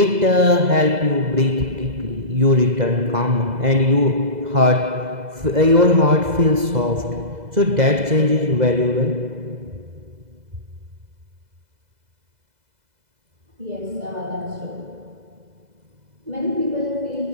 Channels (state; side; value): late; left; 2.0 ms